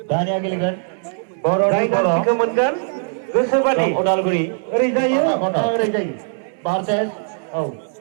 दानिया गेलेगोन जाय गान्थिखौ मोनगोन गोसोबादि उदालगुरि ओरै जायो ओरै जायो। Versus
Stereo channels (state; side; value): silent; left; digital silence